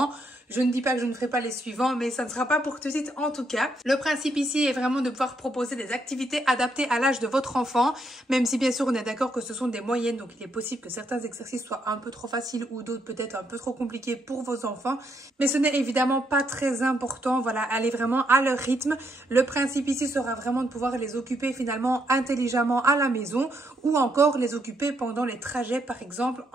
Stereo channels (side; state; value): both; normal; correlation 0.76